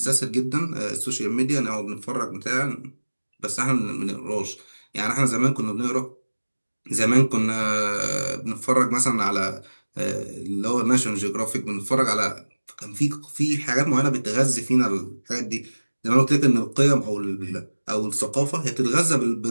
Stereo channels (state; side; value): inverted; both; correlation -1.00